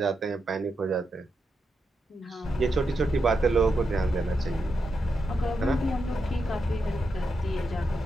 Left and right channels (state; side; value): normal; both; correlation 0.85